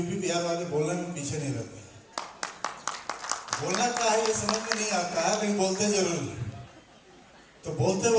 बिहार वाले बोलने में पीछे नहीं रहते। बोलना क्या है ये समझ में नहीं आता है, लेकिन बोलते जरूर हैं। तो बोलते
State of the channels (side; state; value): both; identical; correlation 1.00